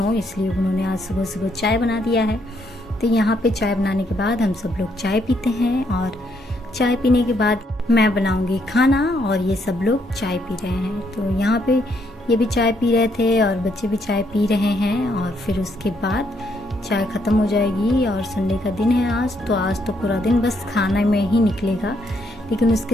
इसलिए उन्होंने आज सुबह सुबह चाय बना दिया है। तो यहाँ पे चाय बनाने के बाद हम सब लोग चाय पीते हैं और चाय पीने के बाद मैं बनाऊंगी खाना और ये सब लोग चाय पी रहे हैं। तो यहाँ पे ये भी चाय पी रहे थे और बच्चे भी चाय पी रहे हैं और फिर उसके बाद चाय ख़त्म हो जाएगी। और संडे का दिन है आज तो पूरा दिन बस खाना में ही निकलेगा। लेकिन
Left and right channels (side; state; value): both; normal; correlation 0.73